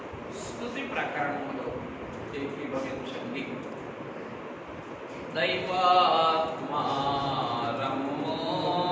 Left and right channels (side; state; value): both; identical; correlation 1.00